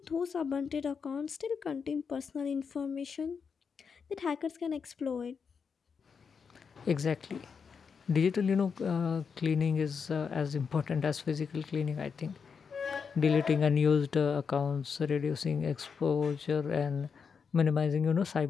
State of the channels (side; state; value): right; quieter; 6.0 dB